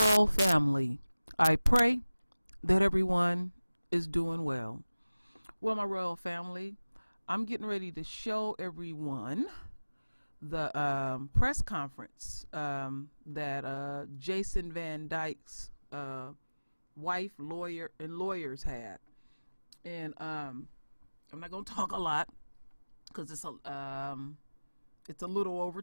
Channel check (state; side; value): inverted; both; correlation -0.98